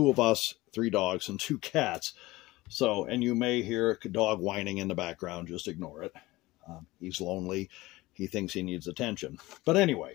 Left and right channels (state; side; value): quieter; right; 19.7 dB